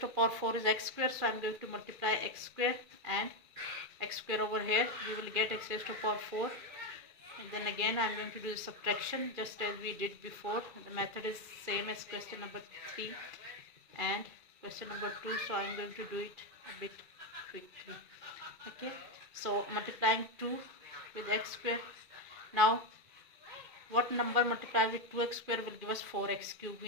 to power 4 is x square, so I am going to multiply x square and x square over here. We will get x raised to power 4, and then again I am going to do the subtraction just as we did before. The method is same as question number 3 and question number 2, so I am going to do it a bit quickly. Okay, so multiplying 2 with x square. Now what number multiplied with 2x square will give us 4x cube?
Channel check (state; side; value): late; left; 2.4 ms